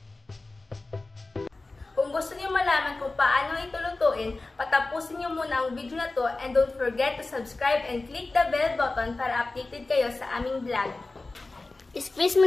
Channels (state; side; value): quieter; right; 3.3 dB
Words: Kung gusto niyo malaman kung paano ito lutuin, patapusin niyo muna ang video na to and don't forget to subscribe and click the bell button para updated kayo sa aming vlog. Squeeze